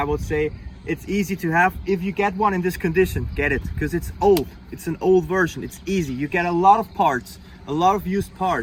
would say it's easy to have. If you get one in this condition, get it, because it's old. It's an old version. It's easy. You get a lot of parts, a lot of used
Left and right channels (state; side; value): identical; both; correlation 1.00